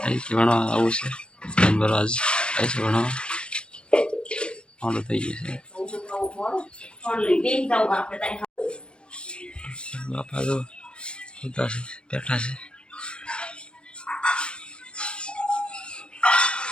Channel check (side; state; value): right; late; 0.054 ms